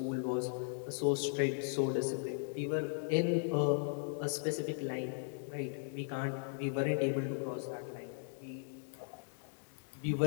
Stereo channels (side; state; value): right; silent; digital silence